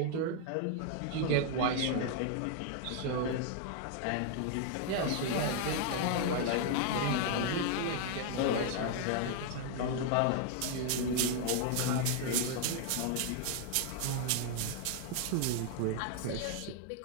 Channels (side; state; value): both; different; correlation 0.00